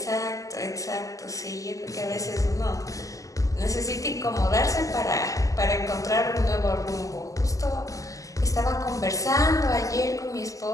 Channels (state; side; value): late; right; 0.16 ms